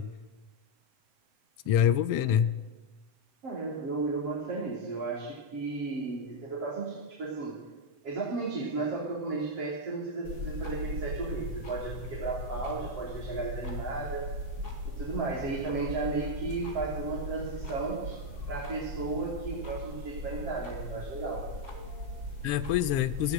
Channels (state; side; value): late; left; 7.3 ms